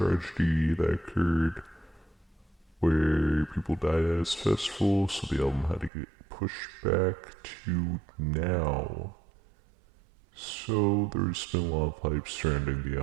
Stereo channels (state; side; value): drops out; left; at 5.9 s